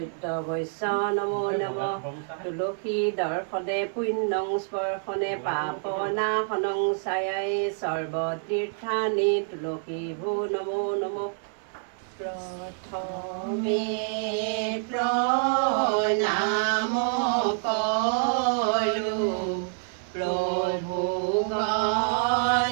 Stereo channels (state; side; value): silent; left; 60 dB below the other